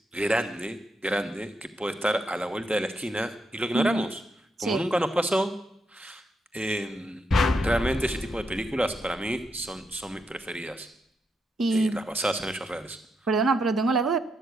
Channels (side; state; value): both; normal; correlation 0.81